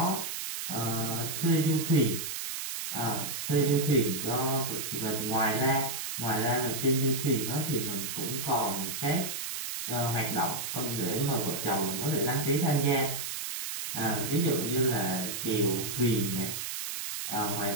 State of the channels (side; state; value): right; noise; hiss, 4 dB below the sound